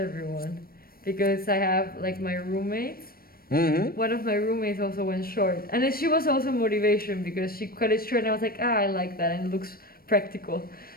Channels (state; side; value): late; right; 0.43 ms